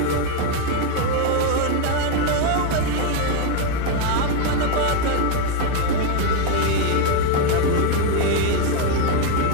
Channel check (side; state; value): both; different; correlation 0.01